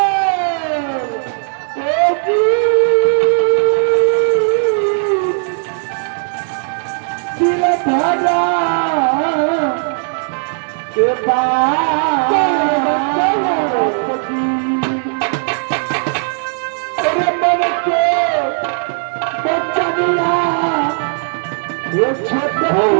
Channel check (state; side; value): silent; left; 69 dB below the other